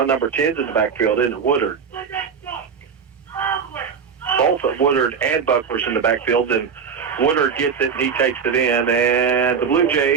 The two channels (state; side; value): quieter; left; 6.4 dB